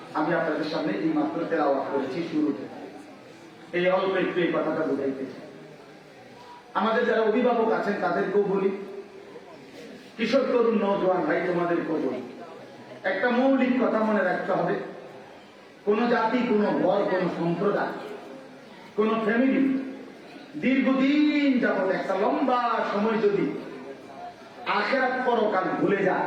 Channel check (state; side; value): identical; both; correlation 1.00